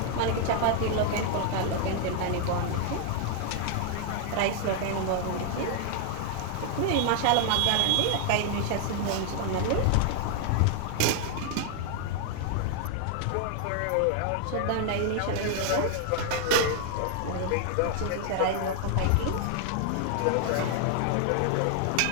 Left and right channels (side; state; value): both; different; correlation 0.00